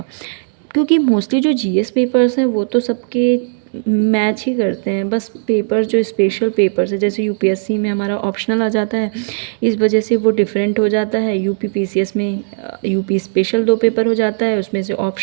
क्योंकि मोस्टली जो जीएस पेपर्स हैं वो तो सबके मैच ही करते हैं। बस पेपर जो स्पेशल पेपर्स है, जैसे यूपीएससी में हमारा ऑप्शनल आ जाता है, इस वजह से वो डिफरेंट हो जाता है। यूपीपीसीएस में यूपी स्पेशल 2 पेपर हो जाता है, उसमें से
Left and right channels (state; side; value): silent; left; digital silence